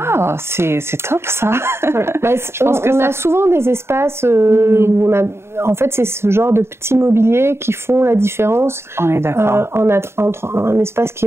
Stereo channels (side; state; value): left; late; 0.12 ms